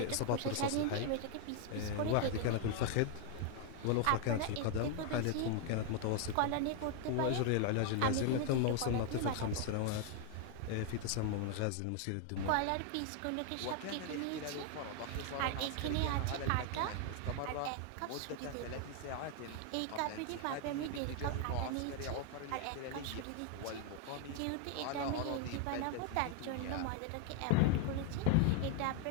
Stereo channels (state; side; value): different; both; correlation 0.00